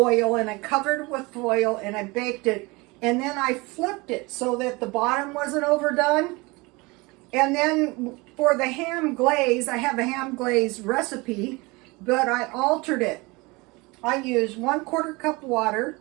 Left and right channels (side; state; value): left; quieter; 24.8 dB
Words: and I covered it with foil, and I baked it, and then I flipped it so that the bottom wasn't overdone. And then for the ham glaze, I have a ham glaze recipe, but I altered it. I used 1/4 cup water,